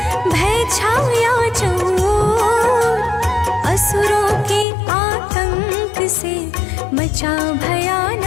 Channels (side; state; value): right; drops out; at 4.7 s